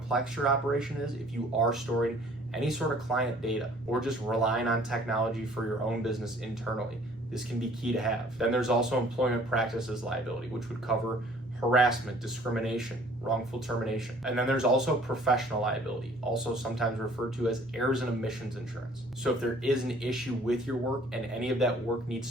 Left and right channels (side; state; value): both; normal; correlation 0.55